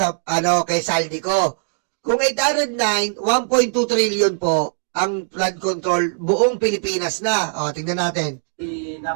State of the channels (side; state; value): left; silent; digital silence